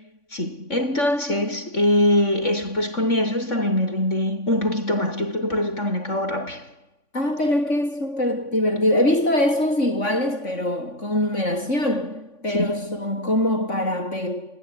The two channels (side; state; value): right; late; 3.5 ms